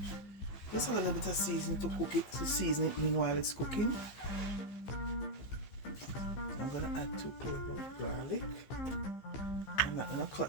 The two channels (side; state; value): right; late; 15 ms